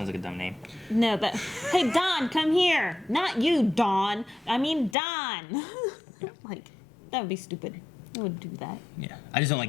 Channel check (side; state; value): right; drops out; at 5.0 s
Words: like a dumb name. No, but hey, Don, come here. Not you, Dawn. I mean Don. Like, that would be stupid. I wouldn't do that. Yeah. I just don't